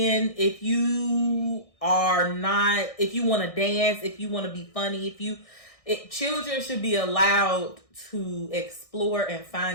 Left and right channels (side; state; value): right; late; 1.6 ms